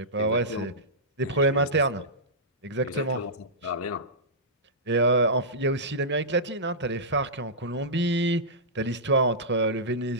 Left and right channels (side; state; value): both; normal; correlation -0.15